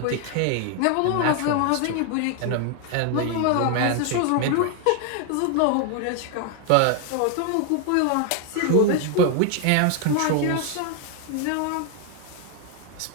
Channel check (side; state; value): both; different; correlation 0.01